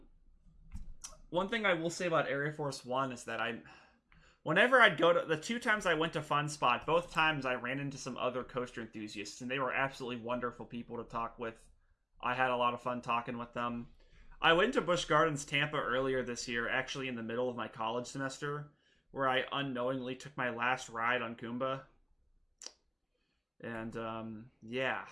thing I will say about Aireforce 1 is that whenever I'd go to, the 2 times I went to Fun Spot, both times I ran into some other coaster enthusiasts, and they were absolutely wonderful people to talk with. I had a lot of fun talking with them. I went to Busch Gardens Tampa earlier this year, actually in the middle of my college semester, where I unknowingly took my last ride on Kumba. And, yeah.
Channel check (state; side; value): identical; both; correlation 1.00